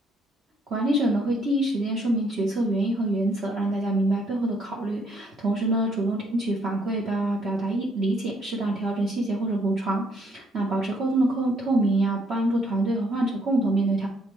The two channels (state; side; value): normal; both; correlation 0.68